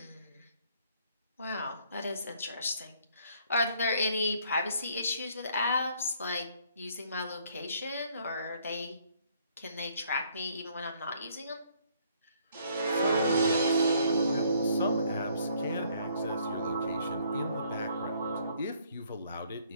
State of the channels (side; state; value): both; inverted; correlation -0.64